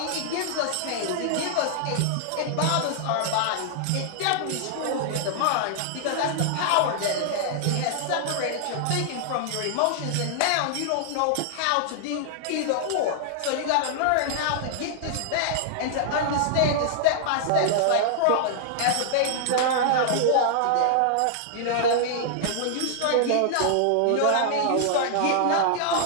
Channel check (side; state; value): both; different; correlation -0.01